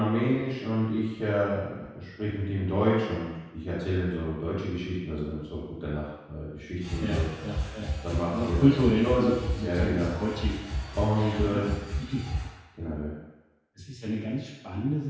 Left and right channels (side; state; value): both; identical; correlation 1.00